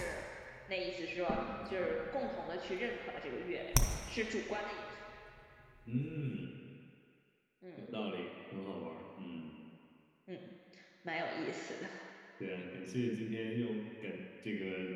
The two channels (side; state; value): both; identical; correlation 1.00